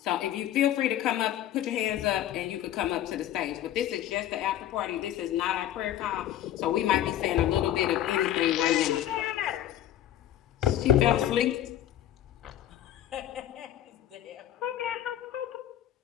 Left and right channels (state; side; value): quieter; right; 12.0 dB